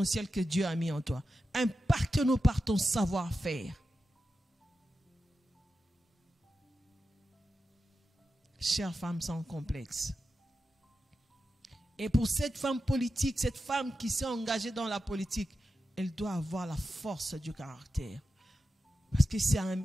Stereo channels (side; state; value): both; normal; correlation 0.91